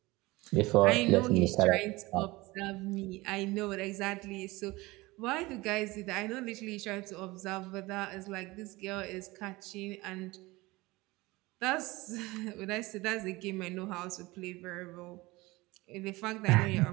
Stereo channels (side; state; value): left; quieter; 21.3 dB